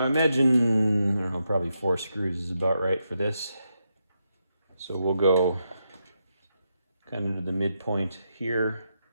I don't know, probably 4 screws is about right for this. So we'll go kind of to the midpoint here,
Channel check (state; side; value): inverted; both; correlation -0.84